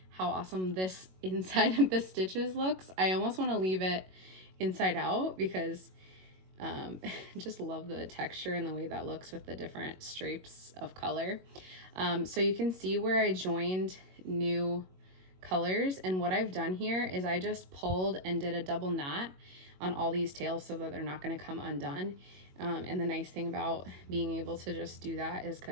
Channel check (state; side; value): late; left; 22 ms